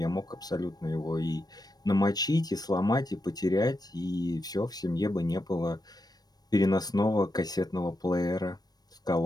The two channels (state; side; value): late; right; 0.19 ms